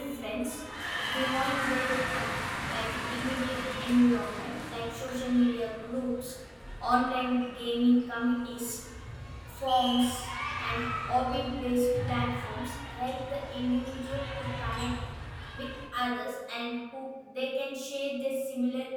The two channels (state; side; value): identical; both; correlation 1.00